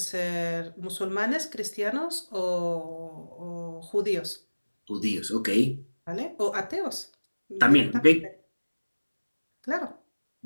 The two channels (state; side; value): inverted; both; correlation -1.00